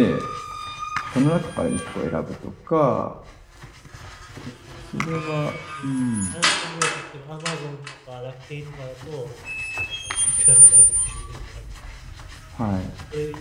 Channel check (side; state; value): both; identical; correlation 1.00